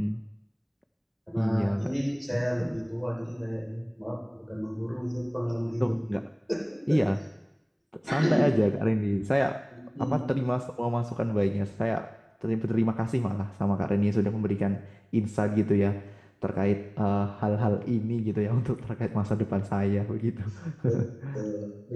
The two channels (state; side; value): identical; both; correlation 1.00